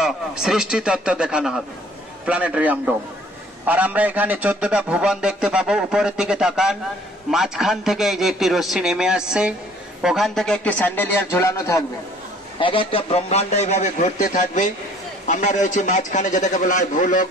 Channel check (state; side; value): normal; both; correlation 0.55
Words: সৃষ্টি তত্ত্ব দেখানো হবে, প্ল্যানেটেরিয়াম ডোম। আর আমরা এখানে 14টা ভুবন দেখতে পাবো। উপরের দিকে তাকান, মাঝখান থেকে এই যে একটি রশ্মি নেমে আসছে, ওখান থেকে একটি স্যান্ডেলিয়ার ঝুলানো থাকবে, এক একটা ব্রহ্মাণ্ড এইভাবে ঘুরতে থাকবে। আমরা রয়েছি মাঝখানে, যেটাকে বলা হয় ভূলোক